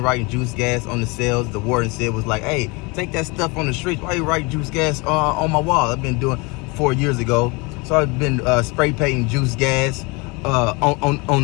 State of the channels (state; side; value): quieter; right; 27.5 dB